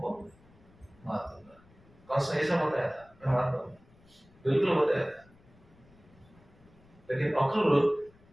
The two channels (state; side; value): noise; left; rumble, 27 dB below the sound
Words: को मार दूंगा। कंस ने ऐसा बताया था, मैं मार दूंगा, बिल्कुल बताया था। लेकिन अक्रूर